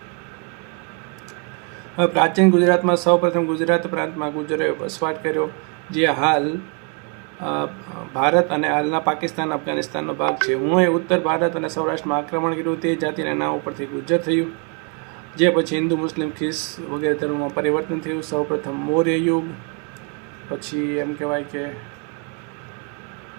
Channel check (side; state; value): left; quieter; 35.2 dB